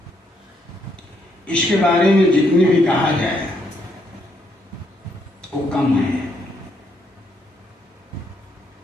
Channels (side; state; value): both; normal; correlation 0.74